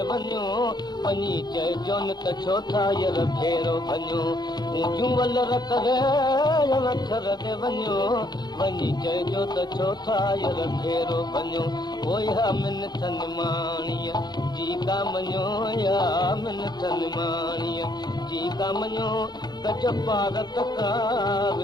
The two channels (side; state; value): right; late; 0.20 ms